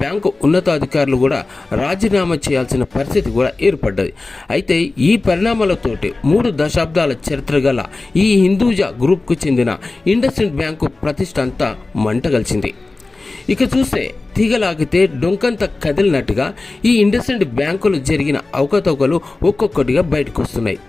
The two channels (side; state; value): right; quieter; 3.3 dB